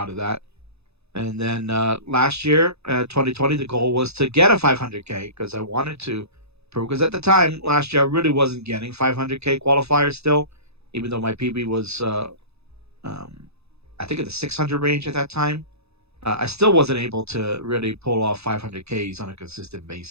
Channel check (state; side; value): late; left; 0.79 ms